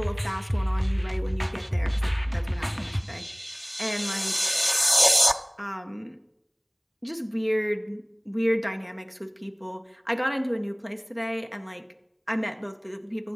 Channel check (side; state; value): both; identical; correlation 1.00